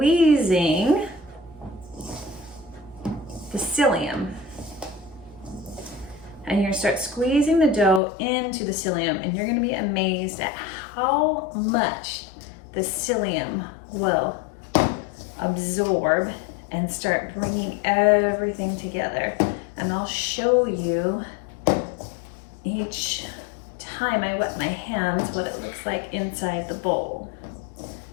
the psyllium. And you're gonna start squeezing the dough into the psyllium, and you're gonna be amazed at how much the psyllium will absorb and start bringing everything together. And I'll show you each time I wet my hands what it looks like inside the bowl.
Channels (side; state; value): right; drops out; at 8.0 s